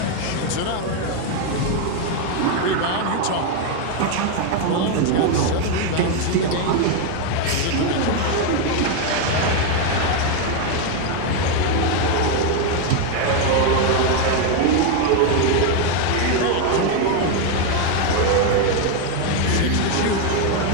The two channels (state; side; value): different; both; correlation 0.01